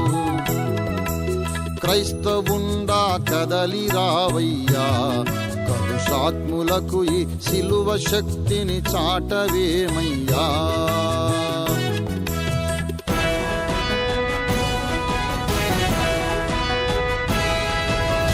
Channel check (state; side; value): identical; both; correlation 1.00